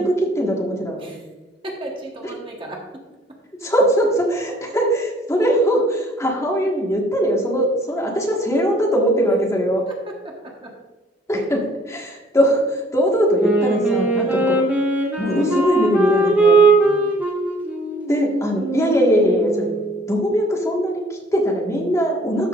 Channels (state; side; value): normal; both; correlation 0.57